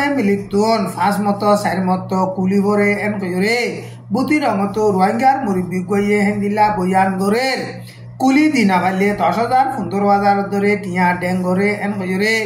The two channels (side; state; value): both; identical; correlation 1.00